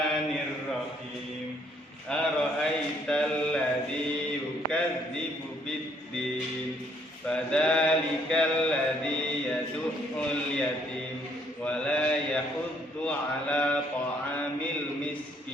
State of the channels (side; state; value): both; normal; correlation 0.67